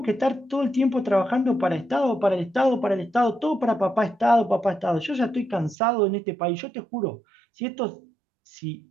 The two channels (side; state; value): left; drops out; at 5.8 s